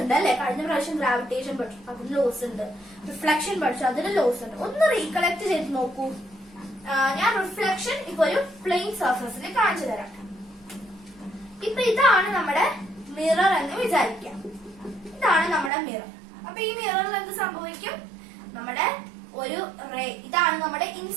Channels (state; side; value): drops out; left; at 15.7 s